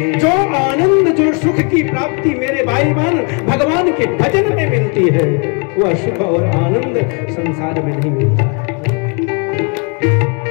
जो आनंद, जो सुख की प्राप्ति मेरे भाई बहन भगवान के भजन में मिलती है, वह सुख और आनंद संसार में नहीं मिलता है।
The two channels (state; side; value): quieter; right; 35.3 dB